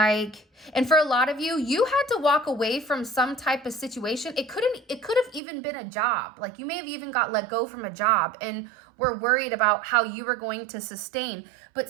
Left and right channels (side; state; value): left; drops out; at 5.4 s